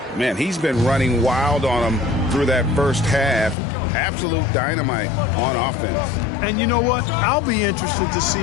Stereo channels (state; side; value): drops out; right; at 3.6 s